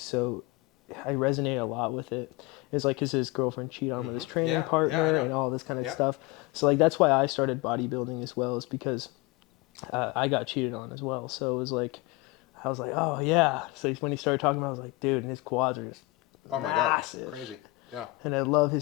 I resonate a lot with it. It's like his girlfriend cheated on him with his training Yeah. partner Yeah, I know. and all this kind of Yeah. stuff. So like that's why I started bodybuilding as well, is because I got cheated on as well. So it was like I was like, oh yeah. So when he started talking about it, I was like, dude, and his quads are just Oh my massive. God. Crazy. Yeah. And I love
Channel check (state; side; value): quieter; right; 22.1 dB